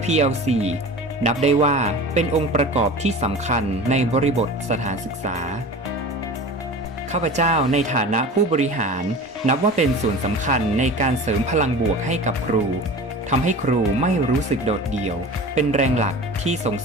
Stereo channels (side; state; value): both; normal; correlation 0.36